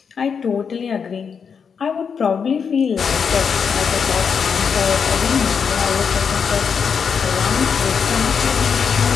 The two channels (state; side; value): quieter; right; 6.4 dB